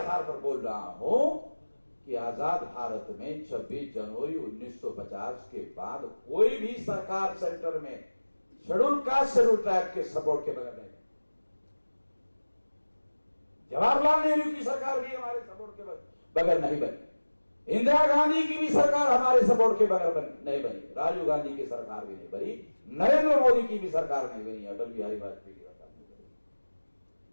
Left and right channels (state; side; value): inverted; both; correlation -1.00